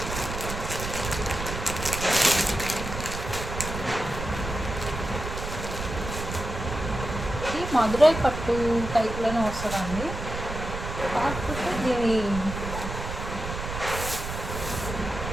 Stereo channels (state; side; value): noise; right; rumble, 6 dB below the sound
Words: ఇది మధురై పట్టు టైప్లోనే వస్తుందండి, కాకపోతే దీని